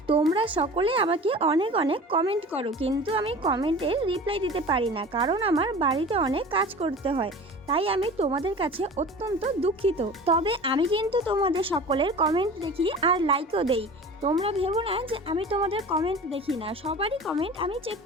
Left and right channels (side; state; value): both; normal; correlation 0.38